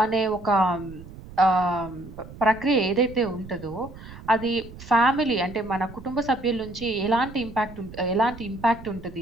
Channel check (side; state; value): right; noise; rumble, 16 dB below the sound